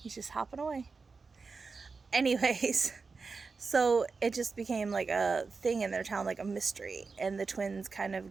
He's just hopping away. Anyways, so it just became like a thing in their town, like a mystery, and the twins kind of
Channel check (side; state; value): left; quieter; 4.5 dB